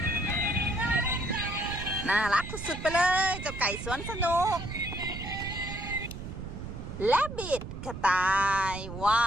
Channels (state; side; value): noise; right; rumble, 9 dB below the sound